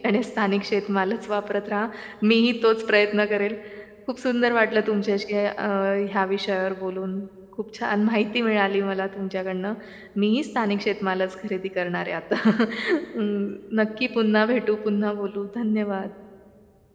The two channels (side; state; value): both; identical; correlation 1.00